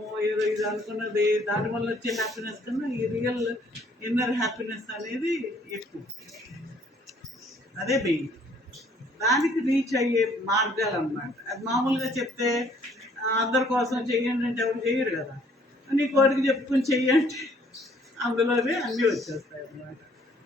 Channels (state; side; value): normal; both; correlation 0.62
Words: ఏదో ఇది అనుకున్నది, దానివల్ల వచ్చే హ్యాపీనెస్ కన్నా ఈ రియల్ ఇన్నర్ హ్యాపీనెస్ అనేది ఎక్కువ. అదే మెయిన్. దానికి రీచ్ అయ్యే మార్గాలు అన్నమాట. అది మామూలుగా చెప్తే అందరి కోసం చెయ్యండి అంటే ఎవరు చెయ్యరు కదా. నీ కోరిక చెప్పుకొని చెయ్యండి, అందులోనే అన్నీ వచ్చేస్తాయి అన్నమాట.